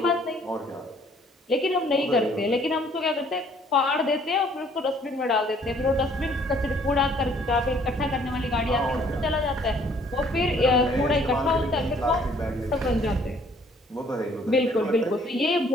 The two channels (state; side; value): normal; both; correlation 0.60